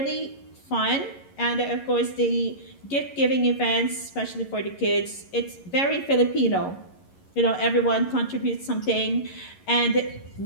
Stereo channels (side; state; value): right; late; 11 ms